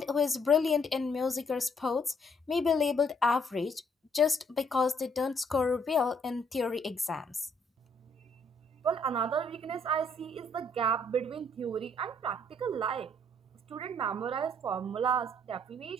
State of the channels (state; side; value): normal; both; correlation 0.67